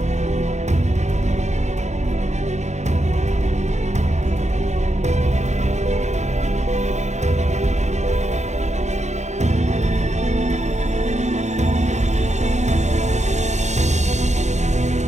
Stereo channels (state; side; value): late; left; 0.33 ms